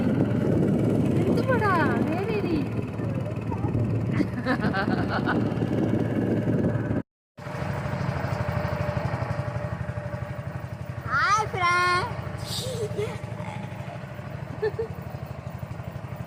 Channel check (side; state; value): both; identical; correlation 1.00